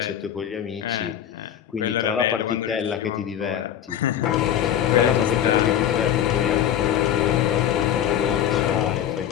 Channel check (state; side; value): quieter; right; 10.2 dB